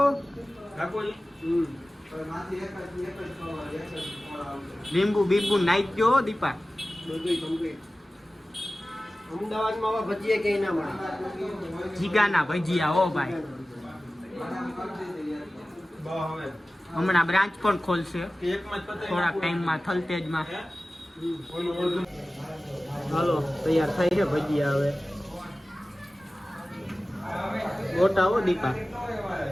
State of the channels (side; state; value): both; normal; correlation 0.96